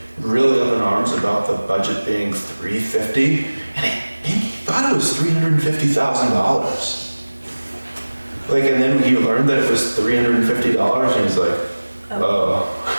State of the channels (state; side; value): inverted; both; correlation -1.00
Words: really up in arms about the budget being 350, and I think he thought it was $350,000. Like, and then he learned that it was $350, and he's like, oh.